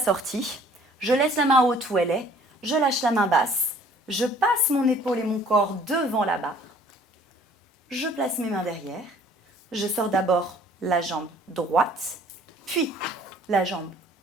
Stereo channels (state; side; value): normal; both; correlation 0.55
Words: je laisse la main haute où elle est, je lâche la main basse, je passe mon épaule et mon corps devant la barre, je place mes mains derrière, je sors d'abord la jambe droite, puis la jambe